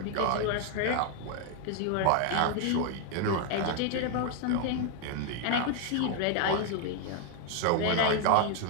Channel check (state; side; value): different; both; correlation 0.00